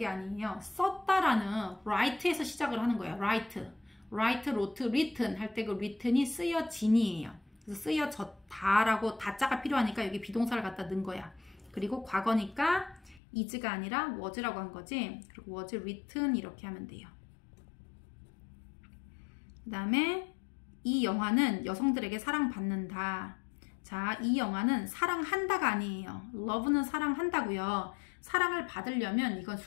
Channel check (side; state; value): right; drops out; at 13.2 s